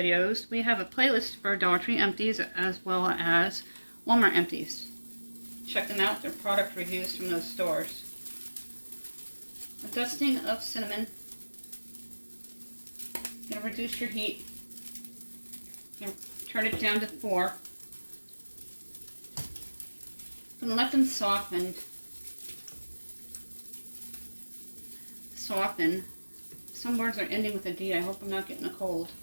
We have a playlist for Dollar Tree Empties as well as Walmart Empties. Check them out. They're product reviews from those stores. A dusting of cinnamon. You're going to reduce your heat. You're going to turn it down to 4. I'm going to let them soften Some words are ending with a D. I hope I'm not getting a cold.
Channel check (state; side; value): inverted; both; correlation -1.00